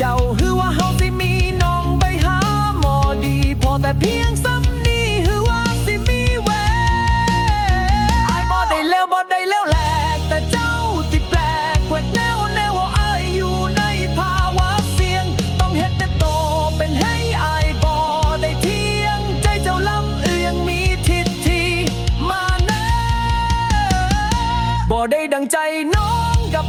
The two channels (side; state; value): both; identical; correlation 1.00